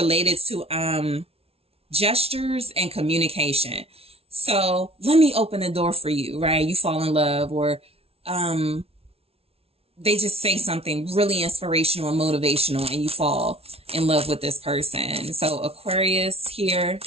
to gestures and communication. So let me open the door for you, right? You fall in love, or they just say something really inspirational and motivational, and you fall in love with this person. So Aquarius here,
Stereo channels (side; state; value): left; late; 0.29 ms